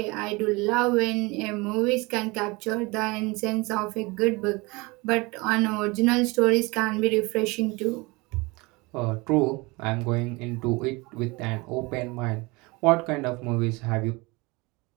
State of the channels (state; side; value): quieter; left; 25.0 dB